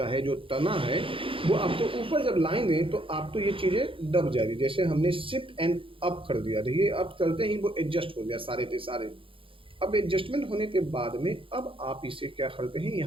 है, जो तना है, वो आप तो ऊपर जब लाएंगे तो आप तो ये चीज़ें दब जाएगी। जैसे हमने शिफ्ट एंड अप कर दिया, देखिए अप करते ही वो एडजस्ट हो गया सारे के सारे। अब एडजस्टमेंट होने के बाद में अब आप इसे क्या करते हैं,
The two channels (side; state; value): left; late; 0.26 ms